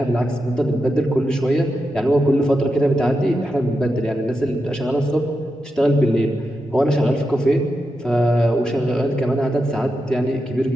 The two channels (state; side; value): normal; both; correlation 0.88